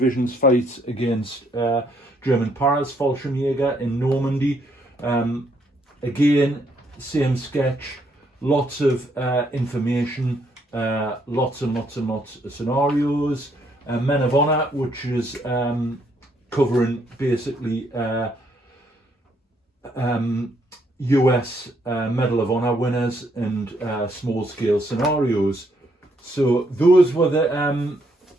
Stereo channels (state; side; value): normal; both; correlation 0.72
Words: fight against German Paras-Fallschirmjäger in Normandy. Again, same sketch, lots of information, lots and lots and lots of scenarios. Men of Honor, which is covering basically US Medal of Honor winners and small-scale scenarios. So those were the